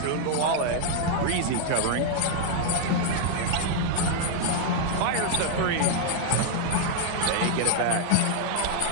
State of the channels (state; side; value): different; both; correlation 0.00